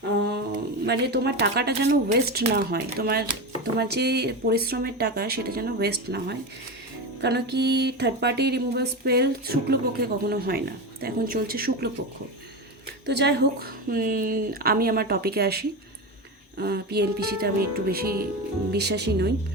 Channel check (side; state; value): both; normal; correlation 0.20